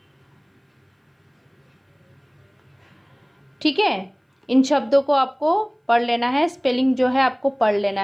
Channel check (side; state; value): both; identical; correlation 1.00